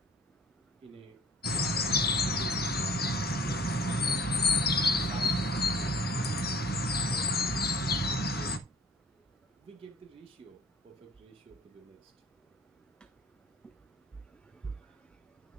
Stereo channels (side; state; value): both; normal; correlation 0.50